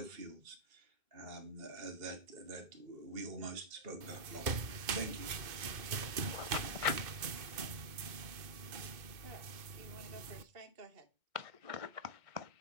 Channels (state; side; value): late; left; 2.2 ms